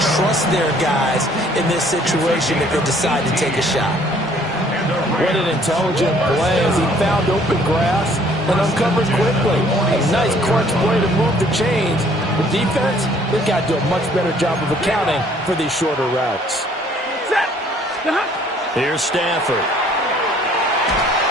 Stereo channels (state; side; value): normal; both; correlation 0.59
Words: trust their guys in this situation if they decide to take a shot. What an intelligent play as he found open grass and uncovered quickly. A nice crunch play to move the chains. The defense, they've got to do a much better job of accounting for these shorter routes. Here's Stafford.